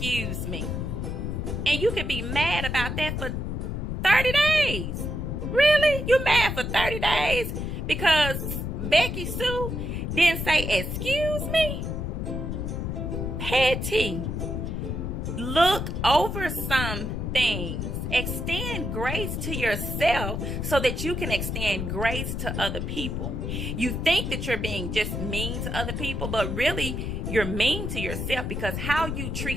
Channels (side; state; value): left; noise; rumble, 3 dB below the sound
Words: me. And you could be mad about that for 30 days. Really? You mad for 30 days because Becky Sue didn't say excuse me? Petty. Look over some things. Extend grace to yourself so that you can extend grace to other people. You think that you're being just mean to other people, but really you're mean to yourself, because how you